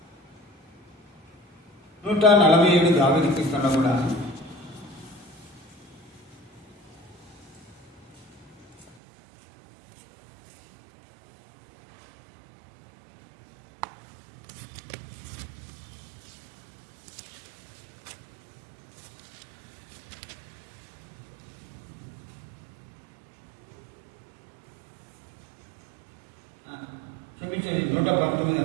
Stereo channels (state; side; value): drops out; left; at 9.0 s